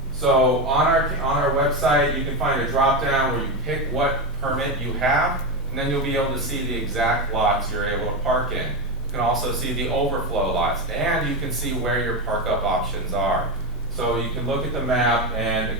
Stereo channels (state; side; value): normal; both; correlation 0.14